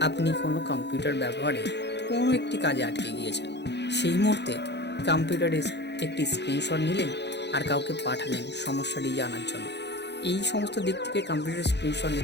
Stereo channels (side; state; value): right; late; 0.50 ms